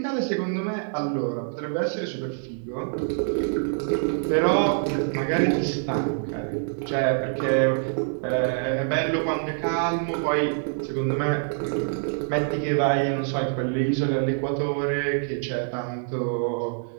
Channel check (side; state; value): left; silent; digital silence